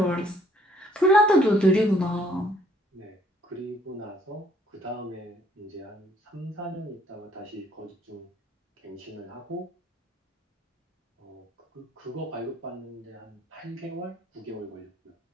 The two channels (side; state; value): both; normal; correlation 0.63